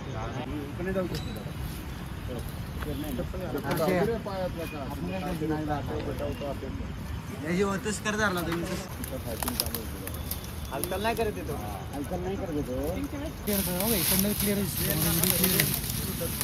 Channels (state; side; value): identical; both; correlation 1.00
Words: हलकल नाही करत येतो, हलकल नाही करत येतो. क्लिअर